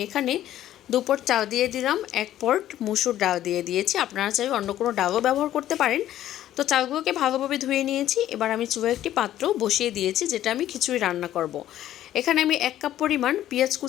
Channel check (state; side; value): quieter; right; 12.6 dB